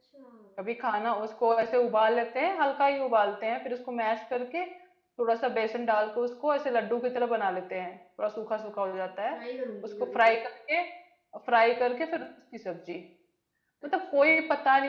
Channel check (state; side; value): identical; both; correlation 1.00